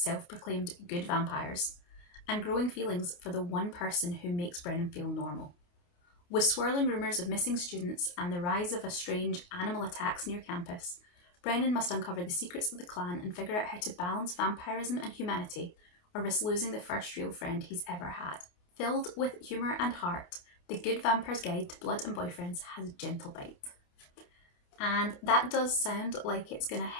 good vampires, and growing feelings for the one person who makes Brennan feel normal. With swirling rumours of missing students and the rise of strange animal attacks near campus, Brennan must uncover the secrets of the clan and figure out how to balance vampirism and humanity, or risk losing the first real friend he's ever had. Filled with humour and heart, The Good Vampire's Guide to Blood and Boyfriends has a gentle bite. And that does sound like it's going to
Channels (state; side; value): late; right; 28 ms